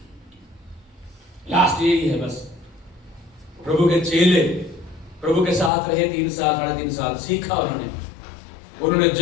लास्ट यही है बस। प्रभु के चेले प्रभु के साथ रहे 3 साल 3.5 साल, सीखा उन्होंने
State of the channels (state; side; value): drops out; right; at 5.7 s